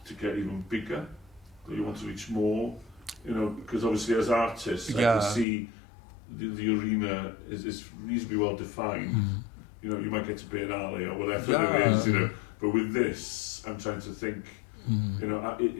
to get even bigger, that you want to reach more? Because obviously as artists, I can see the arena is reasonably well defined. You might get to Bear Alley or whatever it is, but with this, I'm trying to think,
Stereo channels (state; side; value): drops out; right; at 5.5 s